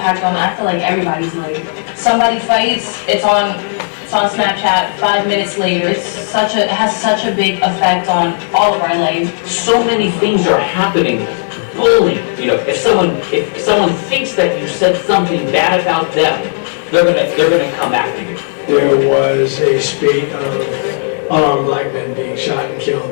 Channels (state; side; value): silent; right; digital silence